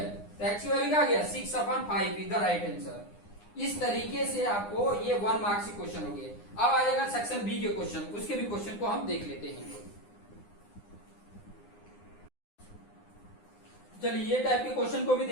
तो x की वैल्यू क्या आ गया, 6/5 इधर राइट आंसर। इस तरीके से आपको ये 1 मार्क्स के क्वेश्चन हो गए। अब आ जाएगा सेक्शन बी के क्वेश्चन, उसके भी क्वेश्चन को हम देख लेते हैं। चलिए ये टाइप के क्वेश्चन को भी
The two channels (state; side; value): late; right; 9.8 ms